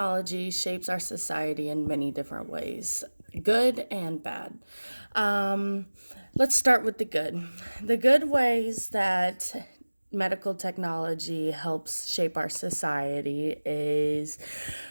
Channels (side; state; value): both; inverted; correlation -1.00